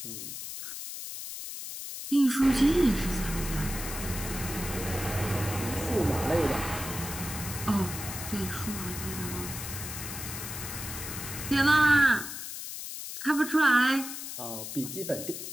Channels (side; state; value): left; noise; hiss, 8 dB below the sound